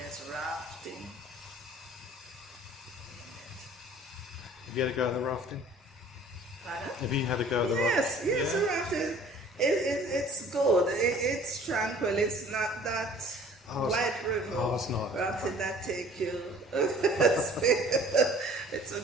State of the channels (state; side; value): normal; both; correlation 0.51